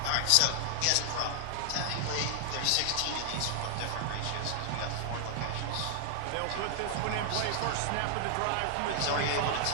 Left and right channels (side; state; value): both; different; correlation 0.00